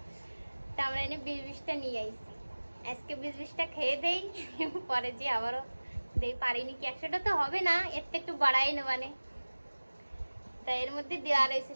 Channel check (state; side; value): inverted; both; correlation -1.00